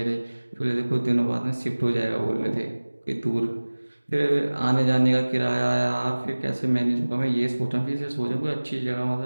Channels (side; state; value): both; inverted; correlation -1.00